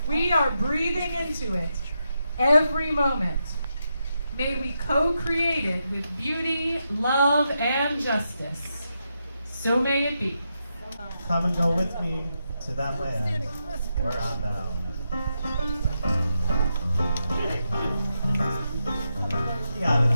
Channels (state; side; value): inverted; both; correlation -0.85